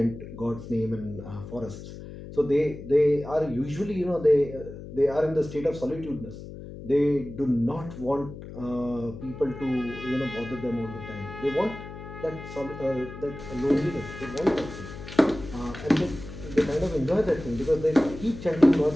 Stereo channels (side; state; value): left; noise; hum, 12 dB below the sound